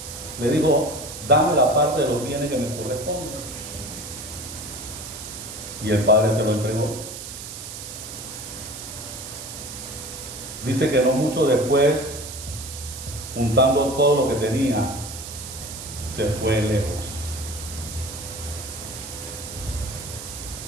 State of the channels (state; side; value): noise; right; hiss, 10 dB below the sound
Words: le dijo, dame la parte de los bienes que me corresponde. Y el padre se lo entregó. Dice que no mucho después, juntando todo lo que tenía, se fue lejos.